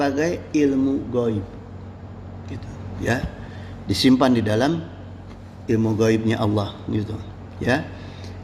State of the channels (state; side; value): identical; both; correlation 1.00